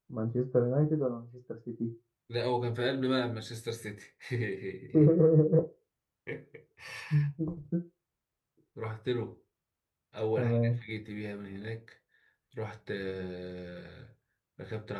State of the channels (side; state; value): both; identical; correlation 1.00